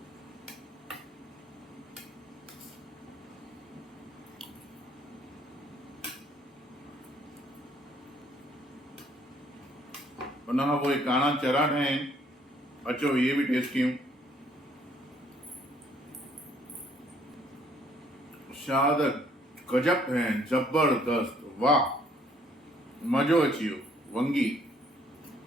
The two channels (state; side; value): normal; both; correlation 0.63